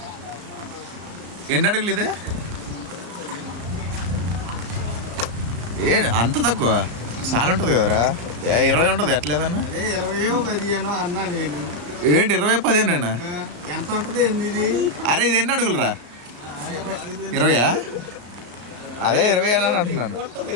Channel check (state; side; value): late; left; 34 ms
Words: ఎన్ని అడుగులు ఇదే ఏ అంత తక్కువ చాలా ఉంటుంది కదరా 20 ఉంటుంది ఎట్లేదన్నా 20-15 అన్నా నేను ఏంటి 20-15 ఎంత ఉంటుంది ఇది అరే ఇది ఎన్ని అడుగులరా 20 అదే 20 అని అంటున్నాను